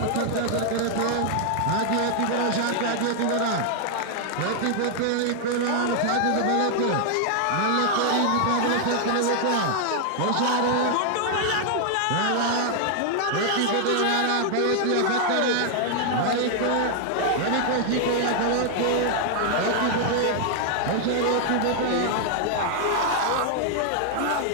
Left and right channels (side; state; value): both; different; correlation 0.00